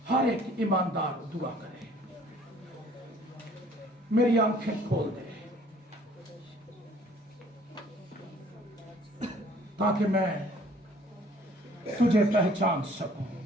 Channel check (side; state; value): both; normal; correlation 0.56